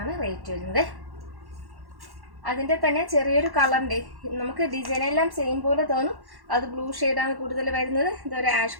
ആണ് റേറ്റ് വരുന്നത്. അതിൻ്റെ തന്നെ ചെറിയൊരു കളറിൻ്റെ നമുക്ക് ഡിസൈനെല്ലാം സെയിം പോലെ തോന്നും. അത് ബ്ലൂ ഷെയ്ഡാണ് കൂടുതൽ വരുന്നത്. ഇതൊരു ആഷ്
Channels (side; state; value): left; late; 1.1 ms